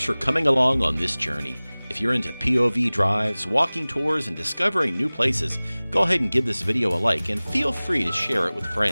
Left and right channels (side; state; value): both; inverted; correlation -0.99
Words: for coming along on this journey. If you're into POV drives, walking tours, and discovering new places, go ahead and give this video a like and feel free to share it with